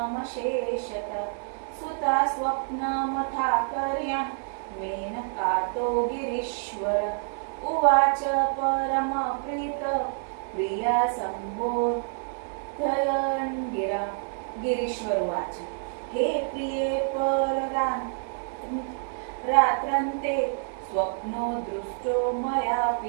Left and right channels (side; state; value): left; silent; 60 dB below the other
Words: सुता स्वप्नमथाकर्यं मेनकातो गिरीश्वर उवाच परमप्रीत प्रिया संबोधयन् गिरा। गिरीश्वर उवाच हे प्रिये रात्रन्ते स्वप्नो दृष्टो